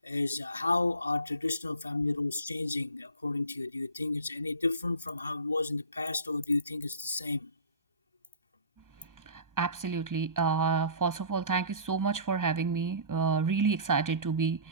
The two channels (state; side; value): inverted; both; correlation -0.40